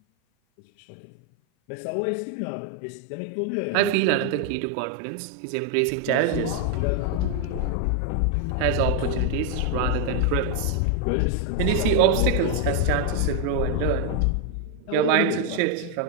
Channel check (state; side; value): different; both; correlation 0.00